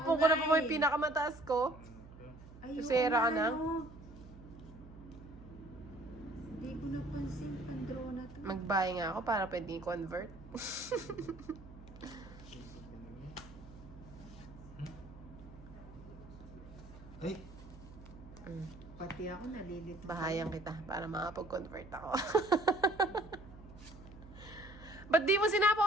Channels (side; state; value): right; noise; hum, 17 dB below the sound